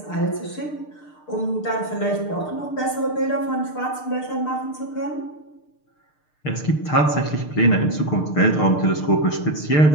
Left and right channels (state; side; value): late; right; 6.6 ms